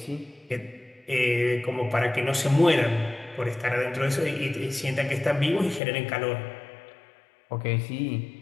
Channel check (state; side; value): drops out; right; at 5.8 s